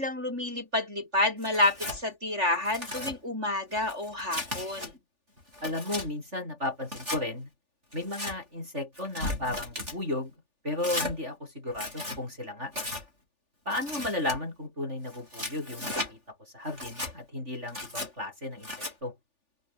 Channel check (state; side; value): late; left; 3.4 ms